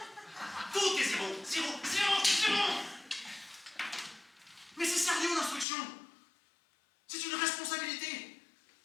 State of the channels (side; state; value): right; drops out; at 5.7 s